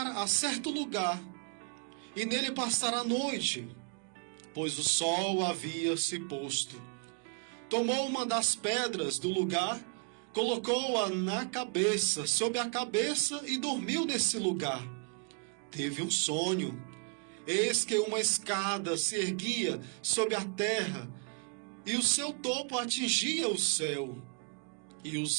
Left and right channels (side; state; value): left; quieter; 39.2 dB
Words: a certo lugar e nele passar a noite, pois o sol havia se posto. Tomou uma das pedras do lugar, colocou-a na cabeça, sob a cabeça, e dormiu nesse lugar. Teve um sonho. Eis que uma escada se erguia sobre a terra, e o seu topo atingia o céu, e